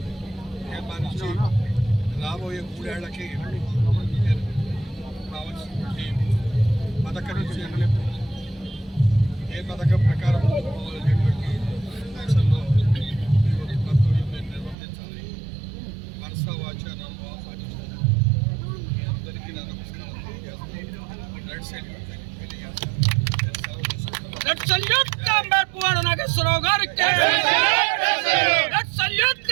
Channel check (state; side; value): drops out; left; at 14.8 s